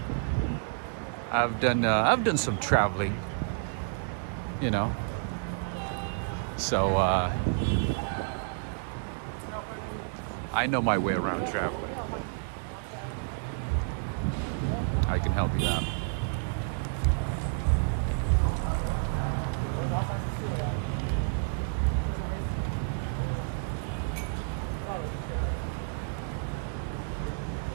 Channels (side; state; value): left; silent; digital silence